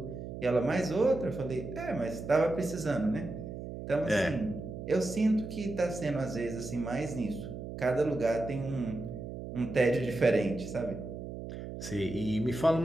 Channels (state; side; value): noise; right; hum, 9 dB below the sound